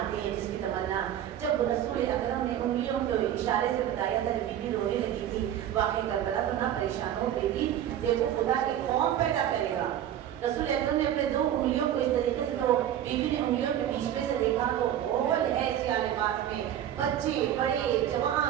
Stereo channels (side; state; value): left; quieter; 11.0 dB